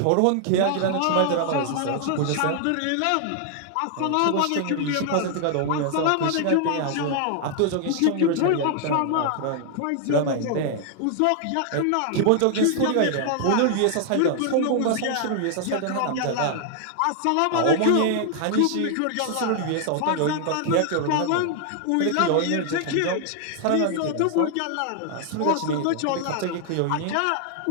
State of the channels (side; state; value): both; different; correlation 0.00